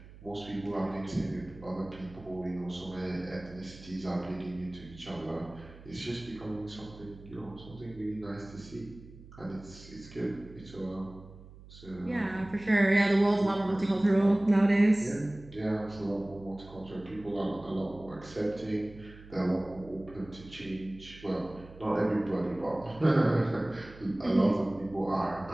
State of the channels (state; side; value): noise; right; hum, 19 dB below the sound